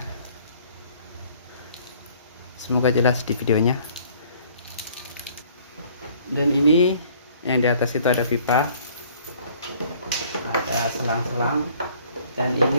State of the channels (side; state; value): both; inverted; correlation -0.57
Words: semoga jelas di videonya. Dan ini yang di atas itu ada pipa, ada selang-selang, dan